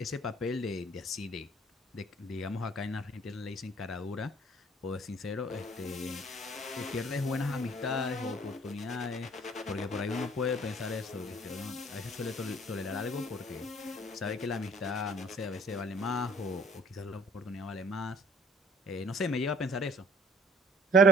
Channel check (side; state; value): both; normal; correlation 0.54